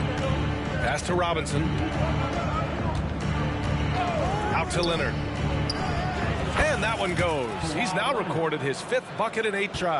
Pass to Robinson. Out to Leonard. And that one goes. He's now recorded his 5th bucket in 8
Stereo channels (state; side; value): identical; both; correlation 1.00